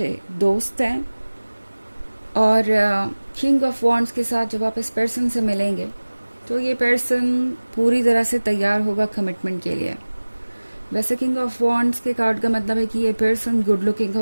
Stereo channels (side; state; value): both; inverted; correlation -1.00